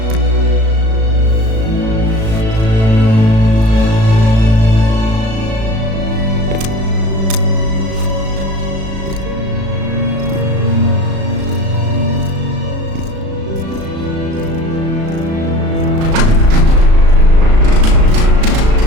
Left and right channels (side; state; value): left; late; 36 ms